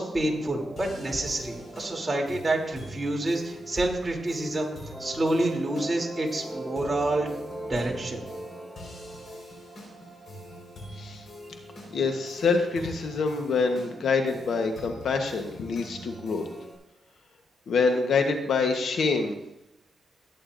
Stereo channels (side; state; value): both; normal; correlation 0.80